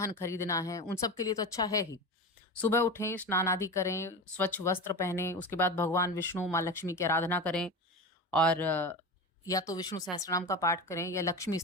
खरीदना है, उन सब के लिए तो अच्छा है ही। सुबह उठें, स्नान आदि करें, स्वच्छ वस्त्र पहने, उसके बाद भगवान विष्णु, माँ लक्ष्मी की आराधना करें और या तो विष्णु सहस्त्रनाम का पाठ करें या लक्ष्मी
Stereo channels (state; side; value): normal; both; correlation 0.25